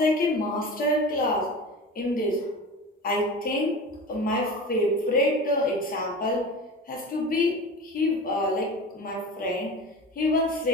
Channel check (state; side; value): normal; both; correlation 0.32